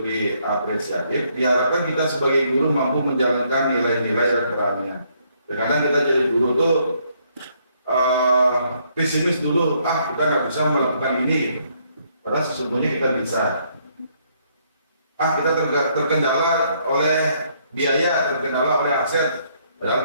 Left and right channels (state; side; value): inverted; both; correlation -0.70